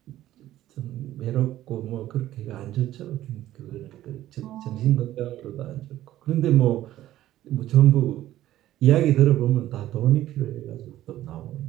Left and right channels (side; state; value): left; quieter; 13.9 dB